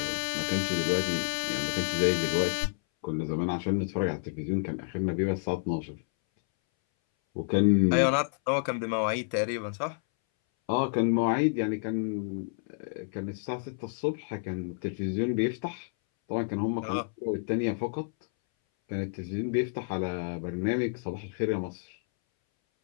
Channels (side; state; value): right; silent; 58 dB below the other